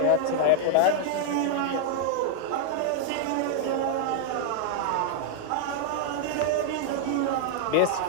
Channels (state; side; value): different; both; correlation -0.01